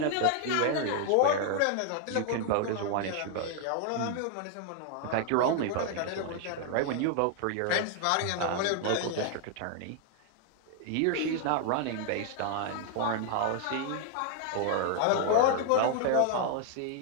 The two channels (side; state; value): both; different; correlation 0.00